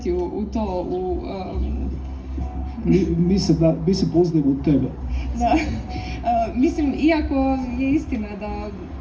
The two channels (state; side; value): identical; both; correlation 1.00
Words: u to, Mi se poznajemo u tebe. Da, mislim, iako je istina da